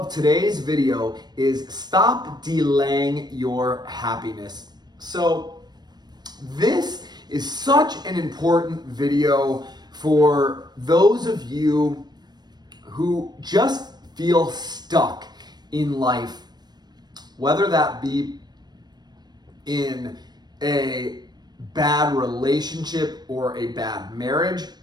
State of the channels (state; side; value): late; left; 0.20 ms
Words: today's video is stop delaying your happiness. So this is such an important video for those of you who just feel stuck in life, whether that be in a bad relationship or a bad marriage